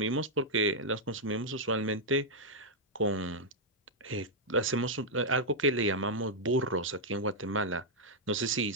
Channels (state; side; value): normal; both; correlation -0.05